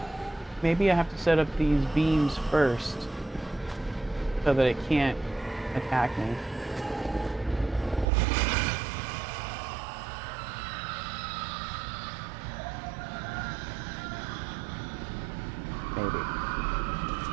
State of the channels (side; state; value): left; drops out; at 8.1 s